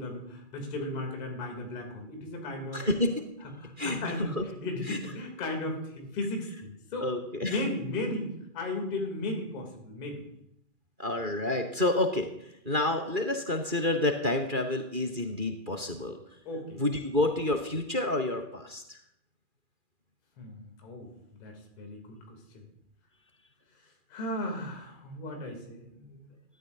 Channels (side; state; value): left; late; 2.4 ms